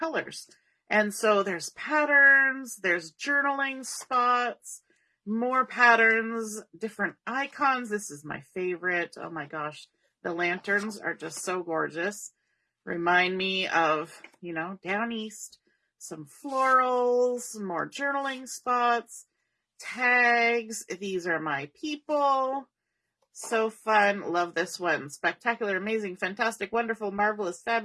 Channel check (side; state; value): both; identical; correlation 1.00